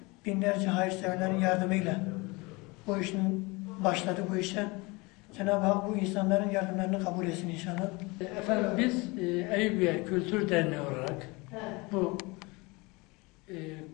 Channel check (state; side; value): quieter; right; 25.4 dB